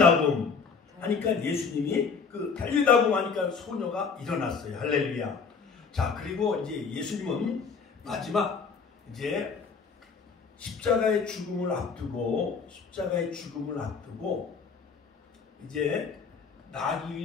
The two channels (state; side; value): quieter; right; 5.4 dB